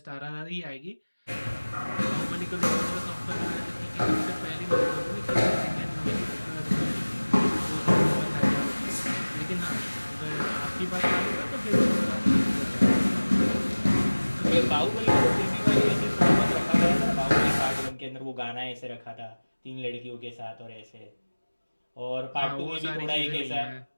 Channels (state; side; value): inverted; both; correlation -1.00